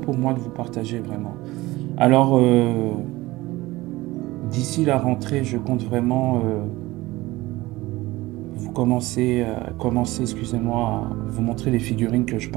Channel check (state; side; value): quieter; left; 19.3 dB